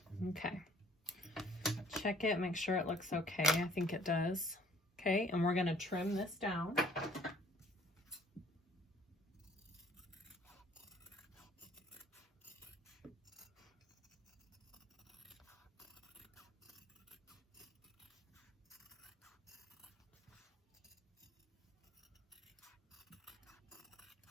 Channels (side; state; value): both; normal; correlation 0.56